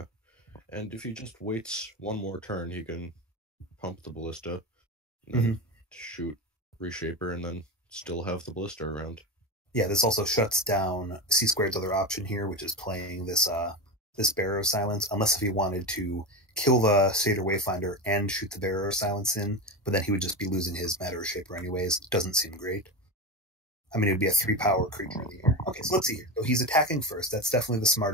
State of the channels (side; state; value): both; normal; correlation 0.20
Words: and if he just waits one more turn, he can pump the Ballista, and then shoot Reshaper, and then still have the Ballista around. Yeah, this also shuts down Csquared's other option here, which is playing this Bearer of Silence, unless if he wanted to kill the Satyr Wayfinder and shoot the Bearer of Silence in, but then he would just be losing his Matter Reshaper anyways. Doesn't seem great. I mean, it would be a 3-power creature in the air. Okay, so let's see here. So he's attacking first. That's definitely the